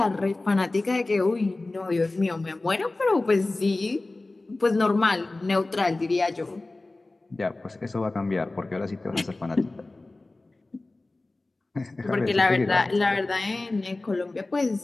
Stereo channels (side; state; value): right; quieter; 3.0 dB